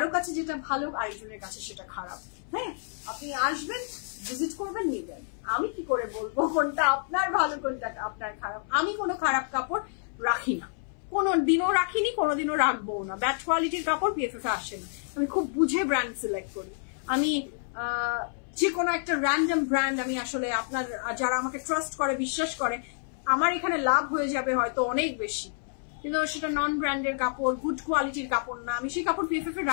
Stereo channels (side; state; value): right; silent; 59 dB below the other